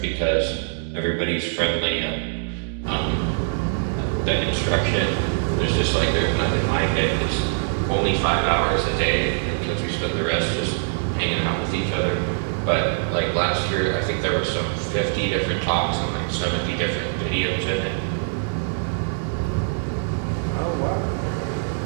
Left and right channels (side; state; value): left; silent; 63 dB below the other